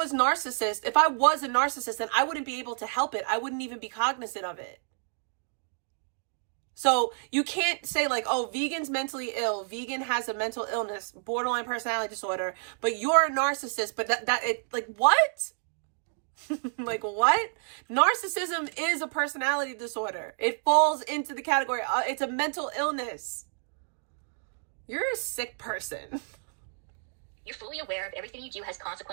a narcissist, then I wouldn't be able to help it. I wouldn't even be cognizant of it. So you can't say like, oh, Vegan's mentally ill. Vegan has a mental illness, borderline personality disorder, but you're a narcissist. But like, what? Like, what? Narcissism is a personality disorder. It falls into the category. It's a mental illness. You're a sick person. You're fully aware of everything you do has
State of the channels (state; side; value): silent; left; digital silence